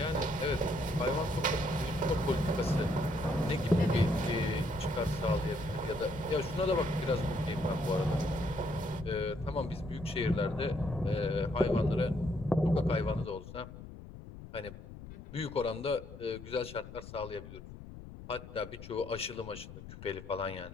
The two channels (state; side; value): noise; left; rumble, 14 dB below the sound